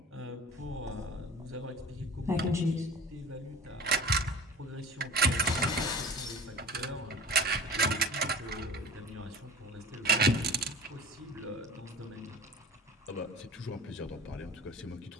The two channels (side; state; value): both; normal; correlation 0.41